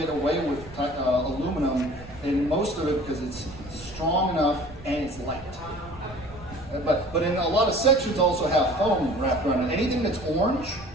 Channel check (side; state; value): right; noise; rumble, 18 dB below the sound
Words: away with aluminum in most of it because it's strong enough and it's light. But in a lot of sections also have foam wrapped around it. Anything that's orange